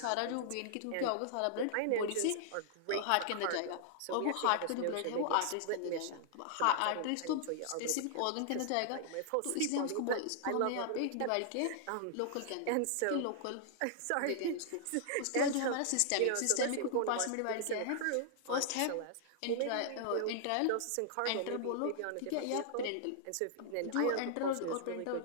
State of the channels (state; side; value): different; both; correlation -0.01